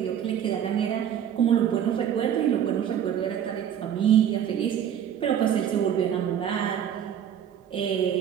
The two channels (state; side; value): quieter; left; 9.4 dB